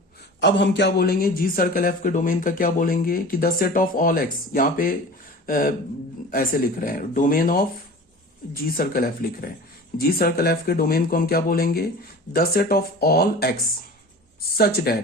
अब हम क्या बोलेंगे, जी सर्कल एफ के डोमेन का क्या बोलेंगे कि the set of all X, यहां पे ऐसे लिख रहे हैं domain of G circle F लिख रहे हैं। जी सर्कल एफ के डोमेन को हम क्या बोलेंगे, the set of all X such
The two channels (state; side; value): normal; both; correlation 0.38